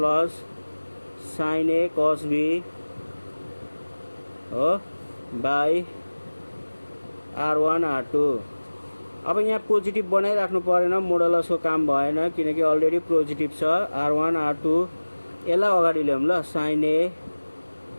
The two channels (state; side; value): inverted; both; correlation -1.00